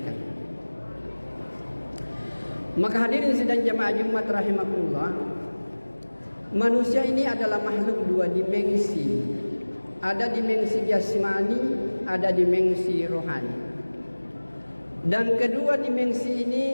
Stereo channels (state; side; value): inverted; both; correlation -1.00